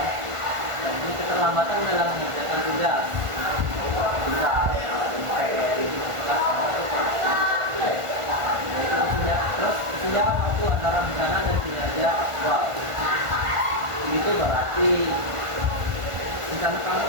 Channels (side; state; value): left; late; 1.5 ms